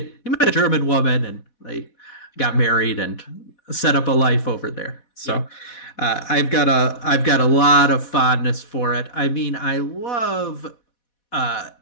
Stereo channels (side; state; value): right; late; 4.1 ms